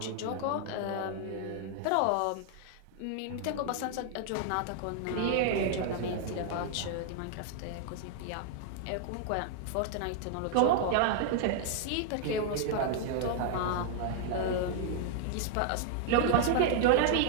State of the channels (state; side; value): different; both; correlation 0.00